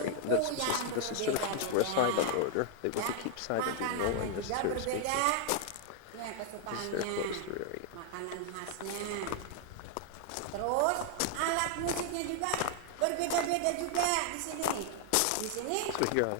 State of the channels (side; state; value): both; different; correlation 0.00